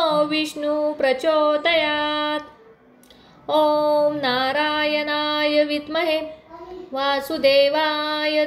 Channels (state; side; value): identical; both; correlation 1.00